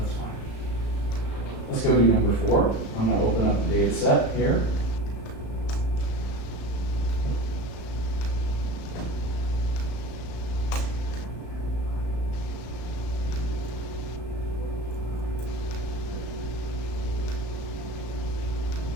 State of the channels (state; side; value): late; right; 35 ms